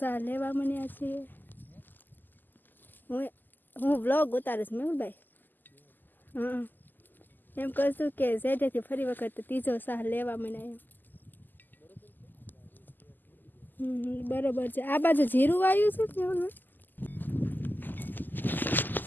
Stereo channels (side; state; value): right; late; 0.088 ms